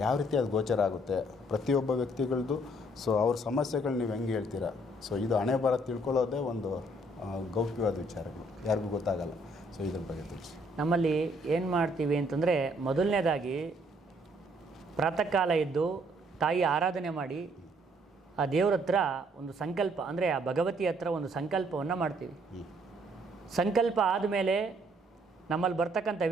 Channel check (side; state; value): both; normal; correlation 0.65